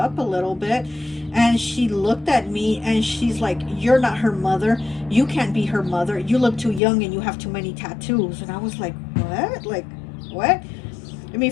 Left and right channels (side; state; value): right; drops out; at 6.8 s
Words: a little bit. And she looked at me and she's like, you're not her mother, you can't be her mother, you look too young and you have too many tattoos. And I was like, what? Like, what? I mean,